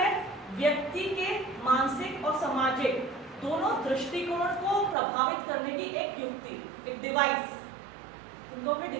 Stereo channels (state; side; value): drops out; left; at 5.0 s